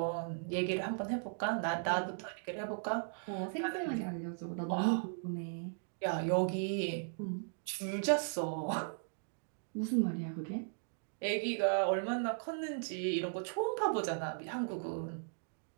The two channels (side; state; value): left; silent; digital silence